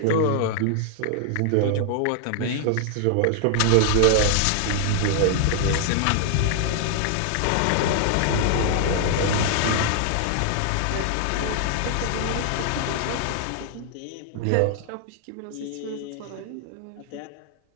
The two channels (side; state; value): both; different; correlation 0.00